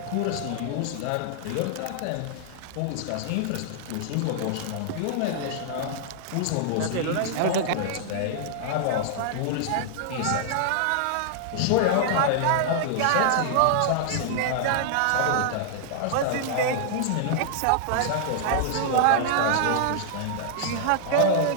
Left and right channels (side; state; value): both; different; correlation -0.01